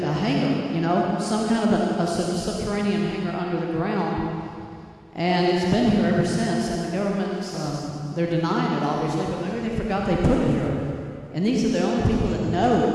a hangar, you know, some kind of a subterranean hangar under the ground. And it's been here ever since, and the government's, they're denying it obviously, but maybe they forgot they put it here. And these are the only people that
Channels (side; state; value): both; identical; correlation 1.00